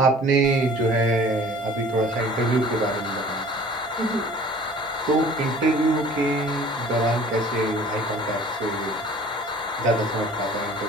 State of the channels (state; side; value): normal; both; correlation 0.48